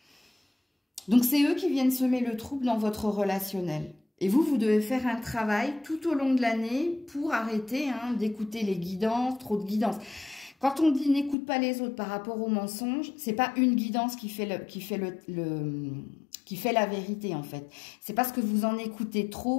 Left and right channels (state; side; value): drops out; right; at 11.4 s